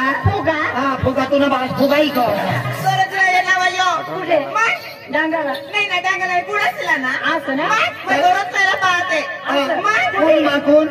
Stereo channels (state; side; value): identical; both; correlation 1.00